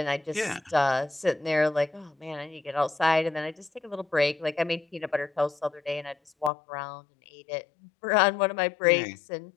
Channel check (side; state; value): right; drops out; at 6.5 s